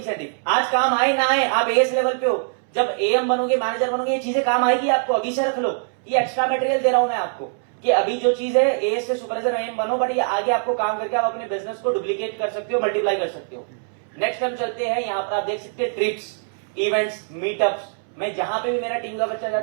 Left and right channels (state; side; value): silent; left; 64 dB below the other